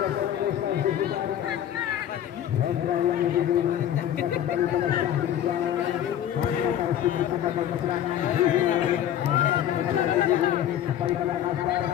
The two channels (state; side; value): quieter; right; 10.8 dB